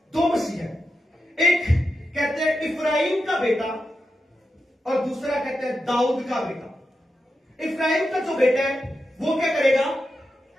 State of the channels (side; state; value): both; normal; correlation 0.88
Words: मसीह है। एक कहते हैं इफ्राइम का बेटा और दूसरा कहते हैं दाऊद का बेटा। इफ्राइम का जो बेटा है वो क्या करेगा,